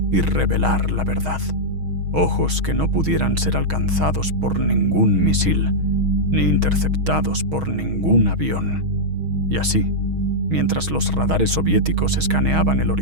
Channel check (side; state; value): left; late; 6.3 ms